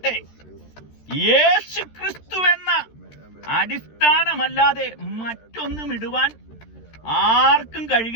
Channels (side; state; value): right; late; 13 ms